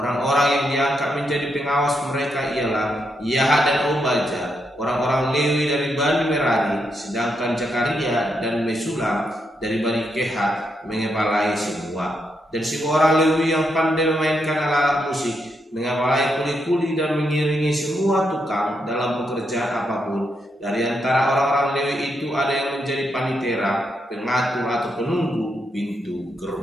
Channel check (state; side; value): normal; both; correlation 0.81